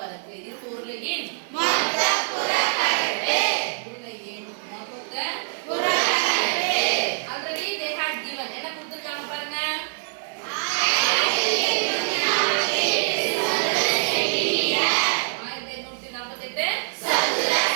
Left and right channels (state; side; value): silent; left; digital silence